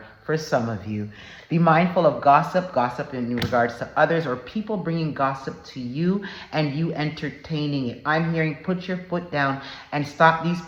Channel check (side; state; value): both; identical; correlation 1.00